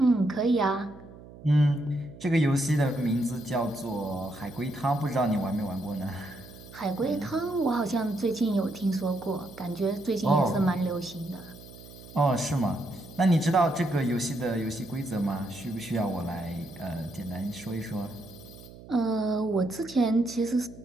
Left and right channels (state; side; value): noise; right; hum, 18 dB below the sound